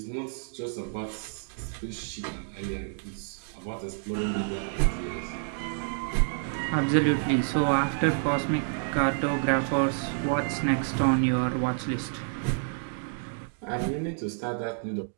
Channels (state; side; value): silent; left; digital silence